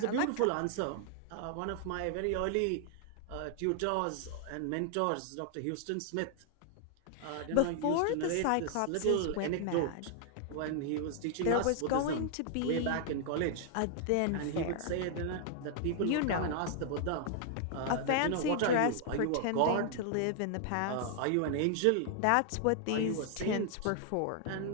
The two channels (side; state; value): both; different; correlation 0.00